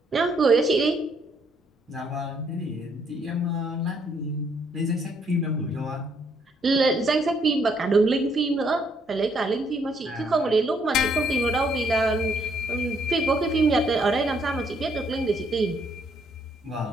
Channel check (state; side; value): normal; both; correlation 0.70